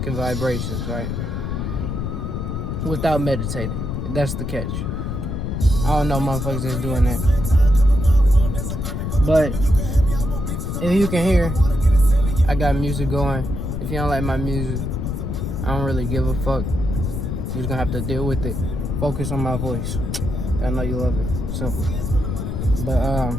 vibrations, right? Without meditating. That's the catch. I don't know motherfuckers that's doing that. But if you can hear, I got music going. If you don't like my music, I don't really give a fuck. You're just gonna have to deal with it. Focus on my voice. I know you love it. Simple. But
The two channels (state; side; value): noise; left; rumble, 3 dB below the sound